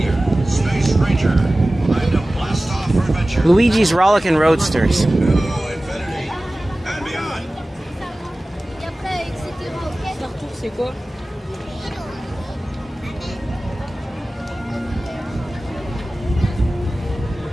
Luigi's Rollickin' Roadsters.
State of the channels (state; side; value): normal; both; correlation 0.97